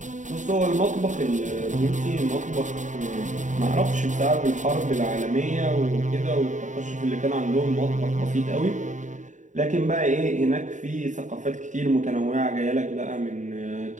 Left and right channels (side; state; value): left; late; 0.36 ms